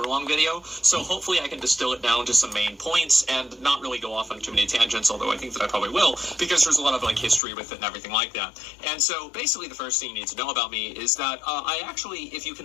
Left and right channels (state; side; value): drops out; right; at 7.4 s